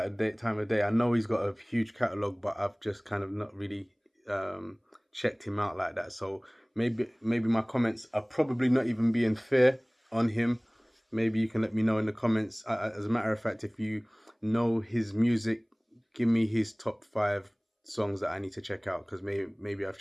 of day. I know he's got a huge catalog, but I've just kind of not really checked him out like that. So maybe my comments are probably not even being fair on him. Maybe you can let me know in the comments. As a matter of fact, if you know his music, give me his top 5 songs that I need to check out, because maybe I've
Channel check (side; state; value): both; identical; correlation 1.00